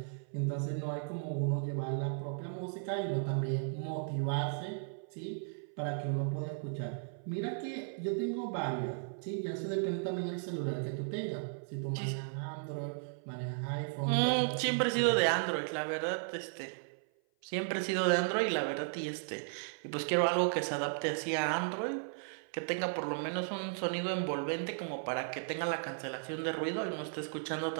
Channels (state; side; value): silent; left; 54 dB below the other